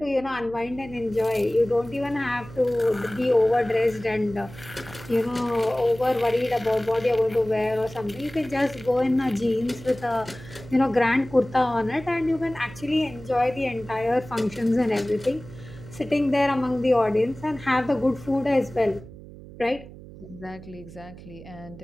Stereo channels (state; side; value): noise; right; hum, 16 dB below the sound